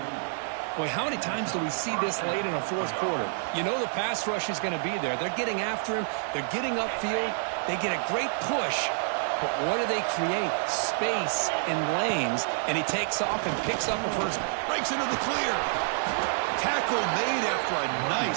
Boy, how many times do we see this late in a 4th quarter? You know the pass rush is going to be there. They're getting after him. They're getting upfield. They get a great push. But what do they create? Space in lanes. And he takes off and picks up a first. Breaks into the clear. Tackle made after a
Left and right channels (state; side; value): silent; left; digital silence